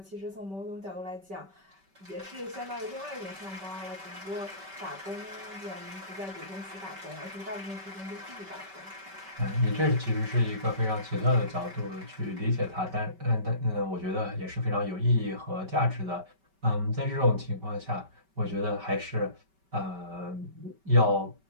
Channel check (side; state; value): left; late; 5.2 ms